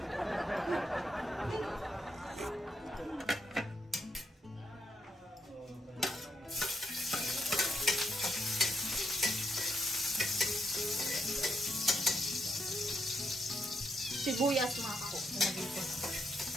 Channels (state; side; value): normal; both; correlation 0.78